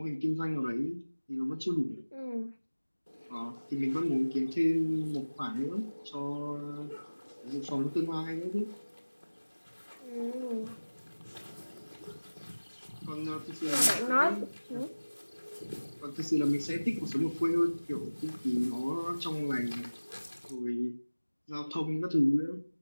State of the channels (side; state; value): both; inverted; correlation -1.00